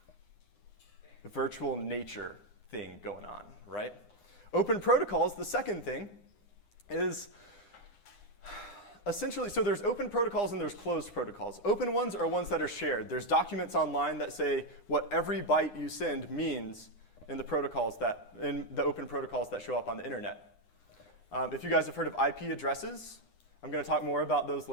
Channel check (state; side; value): late; right; 9.7 ms